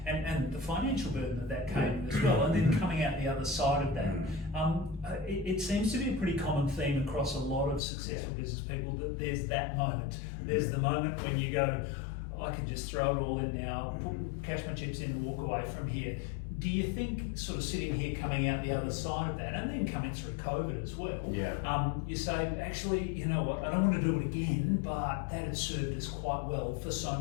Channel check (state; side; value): drops out; right; at 7.8 s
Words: and the financial burden that came as well, and then coming out the other side of that. It seems to be a pretty common theme across a lot of successful business people that there's that moment. There's the moment when you go, I can just throw it all in now, cash my chips in and walk away from here. Do you think, sort of sitting here coming out the other side of that, and then coming through COVID as well, you say, actually, you know what, I don't want to do it again, but that had served us quite well for so